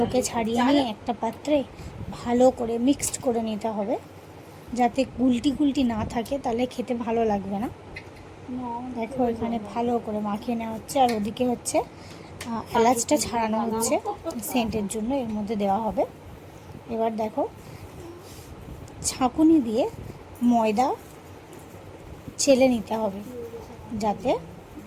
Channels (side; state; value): both; identical; correlation 1.00